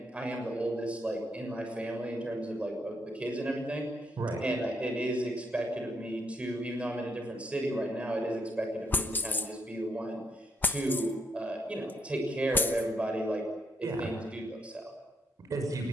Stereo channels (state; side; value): normal; both; correlation 0.75